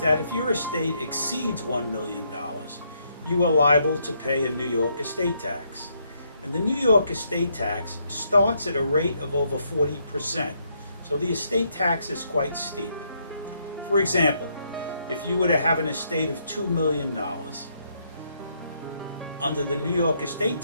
that if your estate exceeds $1 million, you are liable to pay a New York estate tax. And the New York estate tax starts at a rate of over 40%. So the estate tax is quite steep. For example, if you were to have an estate of $2 million, under the New York estate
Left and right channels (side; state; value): both; inverted; correlation -0.74